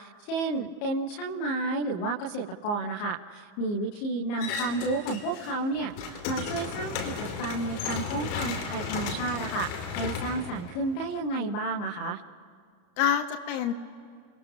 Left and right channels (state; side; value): late; right; 34 ms